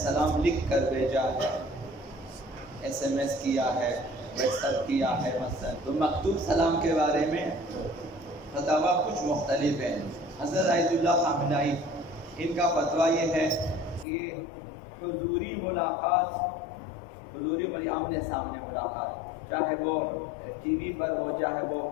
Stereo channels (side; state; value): right; drops out; at 14.1 s